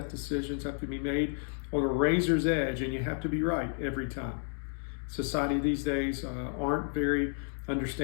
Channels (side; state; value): right; silent; 57 dB below the other